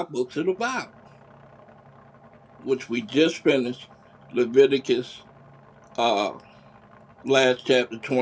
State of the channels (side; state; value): both; identical; correlation 1.00